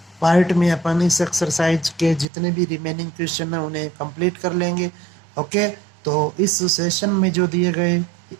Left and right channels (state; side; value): drops out; left; at 2.2 s